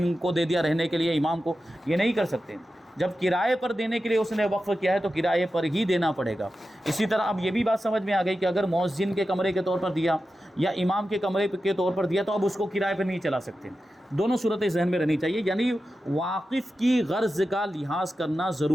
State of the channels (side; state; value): both; normal; correlation 0.92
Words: کو دے دیا رہنے کے لیے، امام کو، یہ نہیں کر سکتے۔ جب کرائے پر دینے کے لیے اس نے وقف کیا ہے تو کرائے پر ہی دینا پڑے گا۔ اسی طرح اب یہ بھی بات سمجھ میں آ گئی کہ اگر مؤذن کے کمرے کے طور پر دیا یا امام کے کمرے کے طور پر دیا تو اب اس کو کرائے پر نہیں چلا سکتے۔ دونوں صورتیں ذہن میں رہنی چاہیے، یعنی واقف کی غرض کا لحاظ کرنا